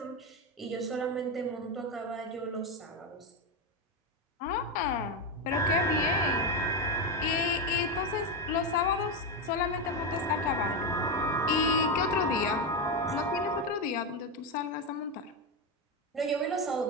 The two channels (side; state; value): both; normal; correlation 0.11